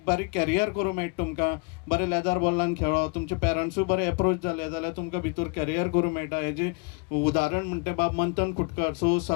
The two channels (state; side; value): quieter; right; 30.7 dB